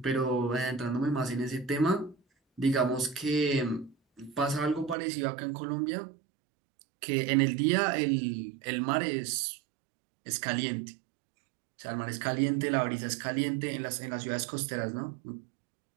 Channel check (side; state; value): left; drops out; at 5.0 s